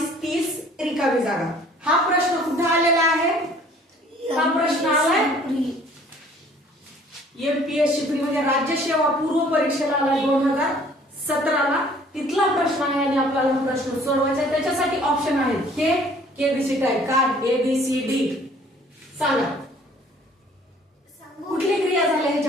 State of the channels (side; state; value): both; normal; correlation 0.55